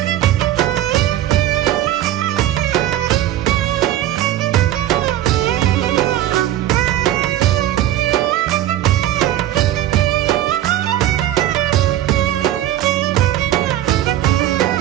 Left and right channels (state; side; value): quieter; left; 13.0 dB